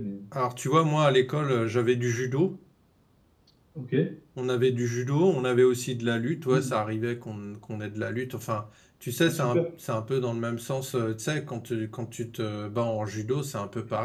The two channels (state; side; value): identical; both; correlation 1.00